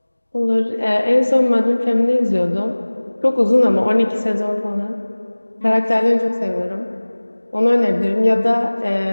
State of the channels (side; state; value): both; inverted; correlation -1.00